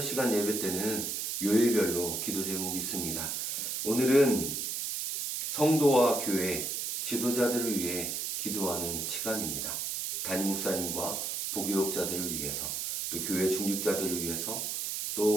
시간 예배 때는 요일별로 기도 제목이 있습니다. 오늘은 성도와 교회 지도자들을 위해 기도하는 시간입니다. 담임 목사님과 부교육자들을 위해서, 또 교회 중직자들을 위해서,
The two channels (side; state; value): right; noise; hiss, 2 dB below the sound